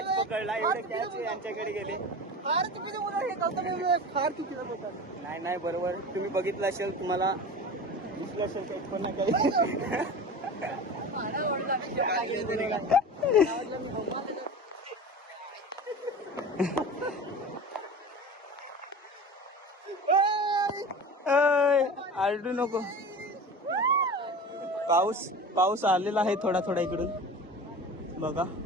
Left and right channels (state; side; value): normal; both; correlation 0.33